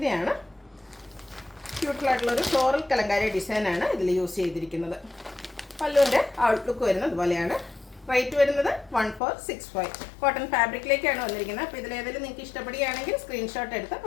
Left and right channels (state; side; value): drops out; right; at 9.2 s